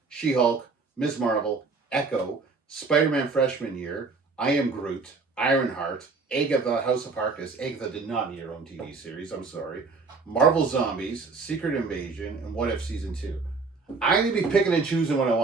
She-Hulk, Ms. Marvel, Echo, Spider-Man Freshman Year, I Am Groot, Ironheart, Agatha House of Harkness. Agatha did not need her own TV series, I'm sorry. Marvel Zombies, Secret Invasion, and What If Season 2. I'm going to be picking and choosing what I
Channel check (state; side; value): quieter; left; 4.3 dB